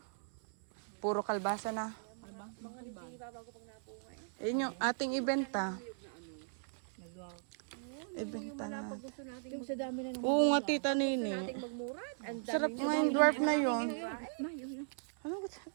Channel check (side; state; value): left; silent; 53 dB below the other